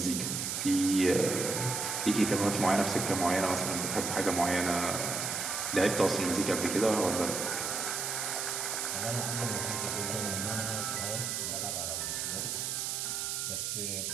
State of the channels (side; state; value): right; noise; hiss, 2 dB below the sound